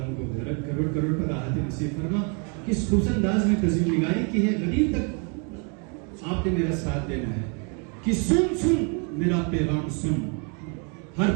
کو کروڑ کروڑ پر راحت نصیب فرما۔ کس خوش انداز میں تزویر نگاری کی ہے، غریب تک آپ نے میرا ساتھ دینا ہے کہ سن سن میرا پیغام سن، ہر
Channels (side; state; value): left; quieter; 36.8 dB